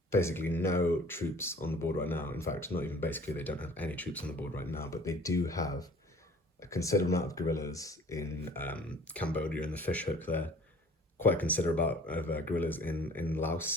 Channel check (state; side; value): normal; both; correlation 0.49